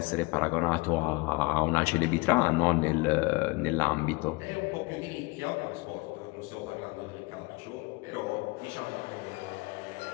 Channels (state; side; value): quieter; right; 25.1 dB